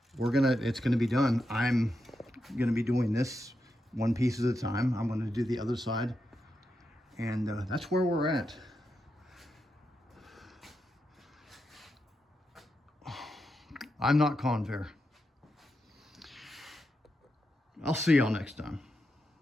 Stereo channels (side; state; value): both; normal; correlation 0.86